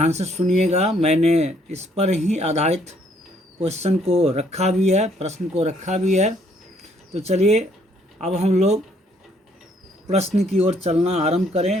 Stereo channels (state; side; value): normal; both; correlation 0.66